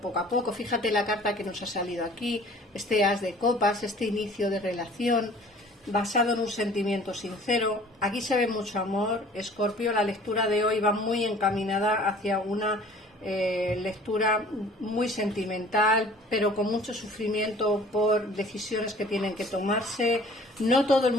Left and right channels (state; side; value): normal; both; correlation 0.50